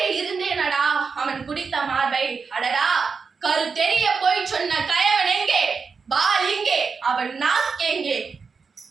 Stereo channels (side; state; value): left; quieter; 5.2 dB